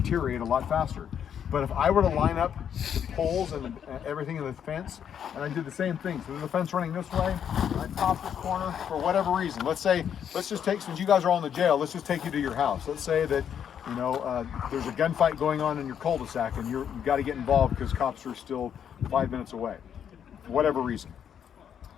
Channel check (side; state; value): right; quieter; 8.6 dB